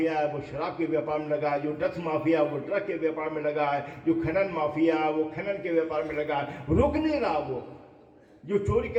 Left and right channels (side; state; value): both; identical; correlation 1.00